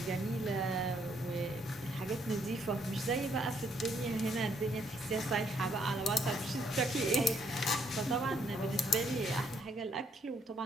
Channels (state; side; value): normal; both; correlation 0.70